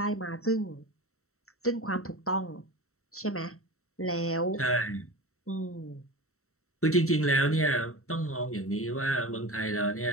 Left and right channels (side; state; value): right; late; 0.63 ms